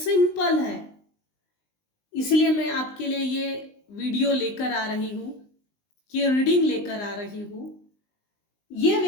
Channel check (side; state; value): right; late; 19 ms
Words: है, इसलिए मैं आपके लिए ये वीडियो लेकर आ रही हूँ, ये रीडिंग लेकर आ रही हूँ। ये